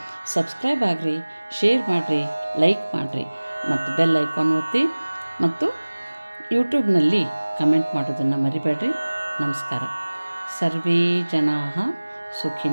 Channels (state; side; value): inverted; both; correlation -1.00